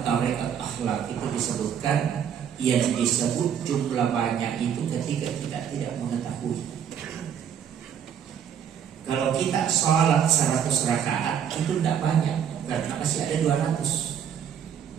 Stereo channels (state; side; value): quieter; left; 8.5 dB